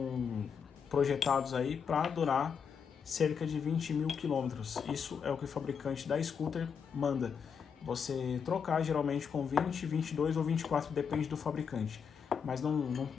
projetados aí para durar cerca de 20.000 quilômetros. Isso é o que o fabricante da scooter manda. Você trocar geralmente com 20, 22 ou 24, depende do fabricante. Mas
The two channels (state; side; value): quieter; right; 6.7 dB